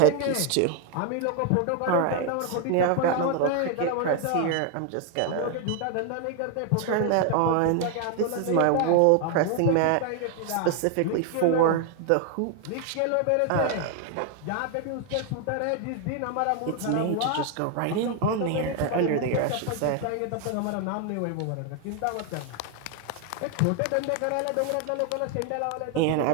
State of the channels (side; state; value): both; different; correlation 0.00